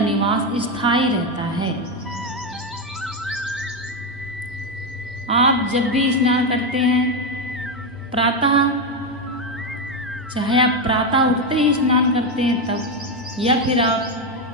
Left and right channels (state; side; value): normal; both; correlation 0.08